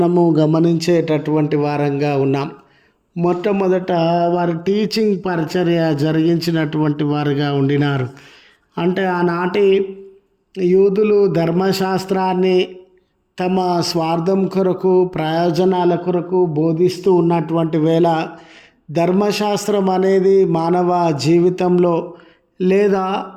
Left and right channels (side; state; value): both; identical; correlation 1.00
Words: గమనించేటటువంటి వారంగా ఉన్నాం. మొట్టమొదట వారి టీచింగ్ పరిచర్య జరిగించినటువంటి వారుగా ఉండినారు. అంటే ఆనాటి యూదులు ధర్మశాస్త్రాన్ని తమ స్వార్థం కొరకు, ప్రయోజనాల కొరకు బోధిస్తూ ఉన్నటువంటి వేళ ధర్మశాస్త్రం అనేది మానవ జీవితంలో లేదా